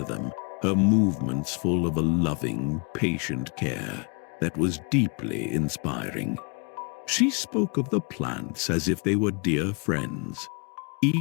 them, her movements full of a loving, patient care that was deeply inspiring. She spoke of the plants as if they were dear friends,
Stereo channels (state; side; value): quieter; right; 35.2 dB